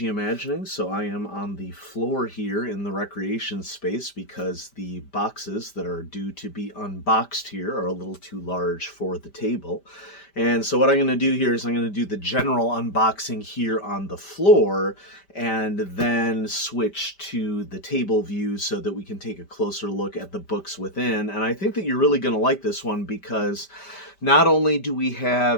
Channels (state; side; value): late; right; 5.1 ms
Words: Imagining. So I am on the floor here in the recreation space because the boxes that are due to be unboxed here are a little too large for the table. And so what I'm going to do here is I'm going to do the general unboxing here on the floor and then switch to the table view so that we can take a closer look at the books within. And I think that you're really going to like this one because not only do we